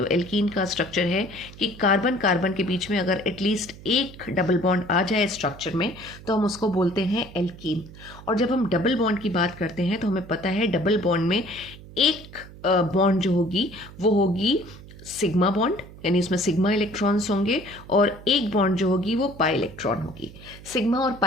एल्कीन का स्ट्रक्चर है कि कार्बन कार्बन के बीच में अगर एटलीस्ट एक डबल बॉन्ड आ जाए स्ट्रक्चर में तो हम उसको बोलते हैं एल्कीन। और जब हम डबल बॉन्ड की बात करते हैं तो हमें पता है डबल बॉन्ड में एक बॉन्ड जो होगी वो होगी सिग्मा बॉन्ड, यानी इसमें सिग्मा इलेक्ट्रॉन्स होंगे, और एक बॉन्ड जो होगी वो पाई इलेक्ट्रॉन होगी। सिग्मा और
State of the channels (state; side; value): noise; right; hum, 18 dB below the sound